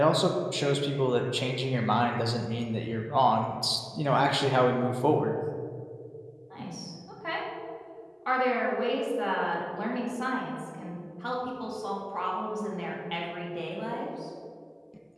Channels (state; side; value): identical; both; correlation 1.00